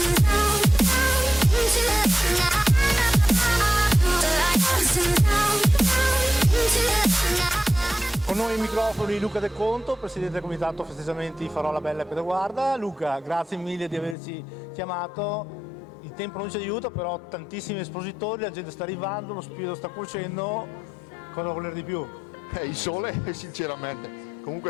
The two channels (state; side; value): drops out; right; at 14.2 s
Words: Con noi ai microfoni Luca De Conto, presidente del comitato festeggiamenti Farò la Bella e Pedaguarda. Luca, grazie mille di averci chiamato. Il tempo non ci aiuta, però tantissimi espositori, la gente sta arrivando, lo spirito sta cuocendo. Cosa voler di più? Il sole, sinceramente.